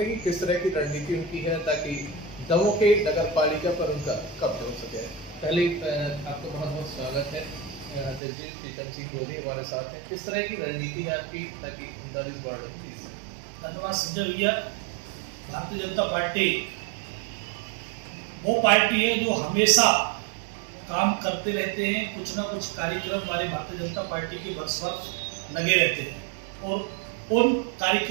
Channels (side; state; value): left; drops out; at 8.2 s